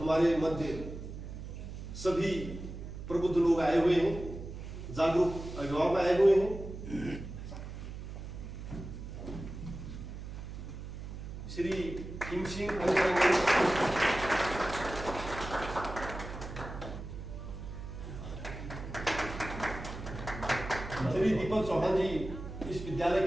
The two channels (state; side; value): noise; right; hum, 9 dB below the sound